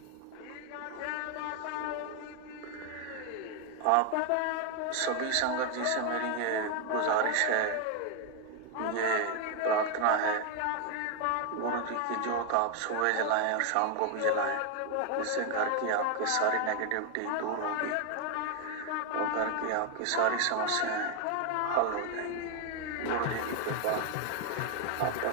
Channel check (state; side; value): different; both; correlation 0.01